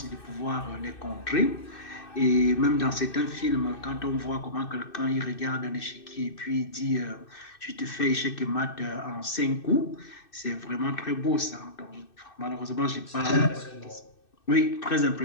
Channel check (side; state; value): right; late; 2.6 ms